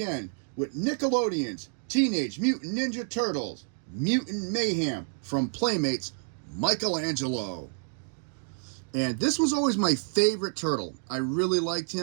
with Nickelodeon's Teenage Mutant Ninja Turtles, Mutant Mayhem from Playmates, Michelangelo. And this was always my favorite turtle. I really liked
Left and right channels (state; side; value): silent; left; digital silence